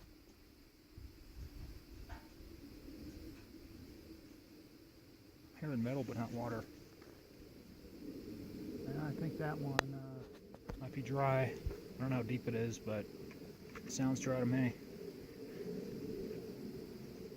Hearing metal, but not water. And I think that one might be dry. I don't know how deep it is, but it sounds dry to me.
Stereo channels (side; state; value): both; identical; correlation 1.00